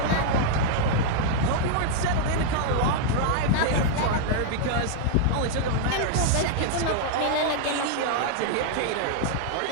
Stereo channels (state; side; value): different; both; correlation -0.01